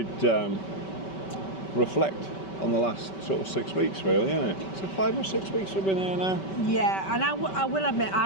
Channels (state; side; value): late; right; 5.2 ms